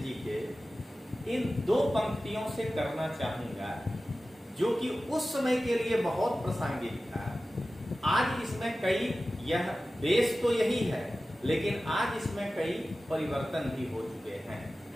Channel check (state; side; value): normal; both; correlation 0.95